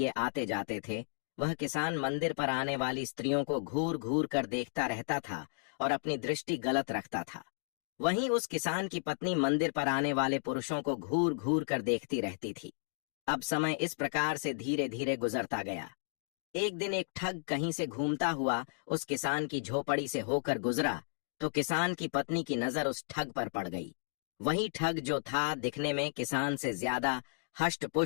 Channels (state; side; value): silent; right; digital silence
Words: आते जाते थे, वह किसान मंदिर पर आने वाली स्त्रियों को घूर घूर कर देखता रहता था और अपनी दृष्टि गलत रखता था। वहीं उस किसान की पत्नी मंदिर पर आने वाले पुरुषों को घूर घूर कर देखती रहती थी। अब समय इस प्रकार से धीरे धीरे गुजरता गया। एक दिन एक ठग कहीं से घूमता हुआ उस किसान की झोपड़ी से होकर गुजरा तो किसान की पत्नी की नजर उस ठग पर पड़ गई। वही ठग जो था दिखने में किसान से ज्यादा